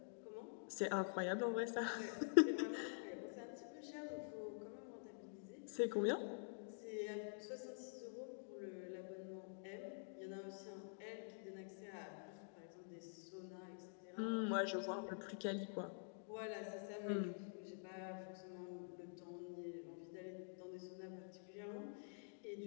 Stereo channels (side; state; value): right; silent; digital silence